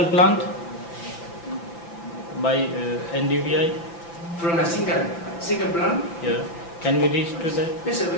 plant by NDVI? From a single plant? Yeah. Can we reach to that? Yes,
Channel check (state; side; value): late; right; 5.9 ms